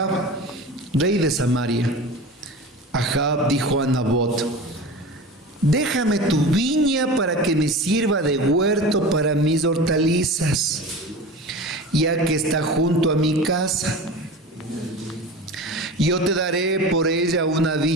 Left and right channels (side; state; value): both; normal; correlation 0.33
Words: rey de Samaria. Ahab dijo a Nabot: déjame tu viña para que me sirva de huerto para mis hortalizas, ya que está junto a mi casa. Yo te daré por ella una